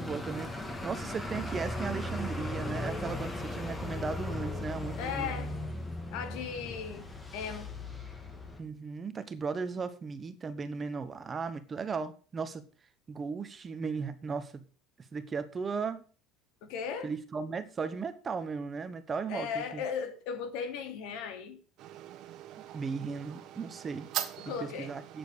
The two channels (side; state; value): both; normal; correlation 0.66